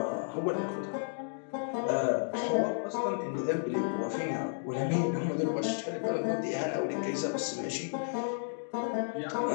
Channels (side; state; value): right; silent; digital silence